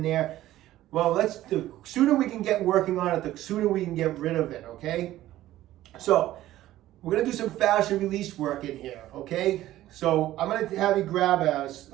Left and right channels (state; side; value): quieter; left; 14.5 dB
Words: there. Well, the sooner we can get working on it, the sooner we can get rid of it, okay? So we're gonna do some fascia release work in here, okay? So I'm gonna have you grab